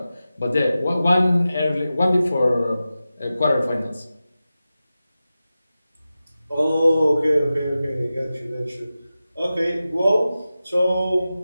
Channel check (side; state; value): both; inverted; correlation -0.94